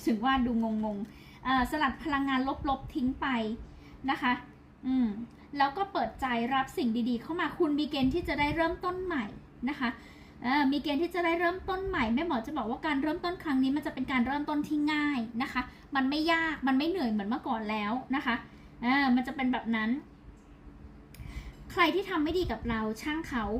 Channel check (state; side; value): identical; both; correlation 1.00